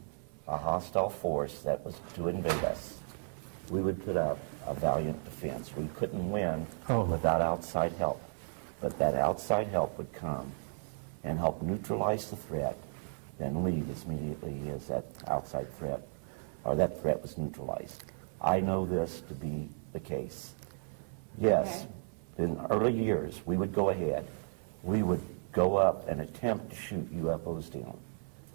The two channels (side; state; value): left; silent; 55 dB below the other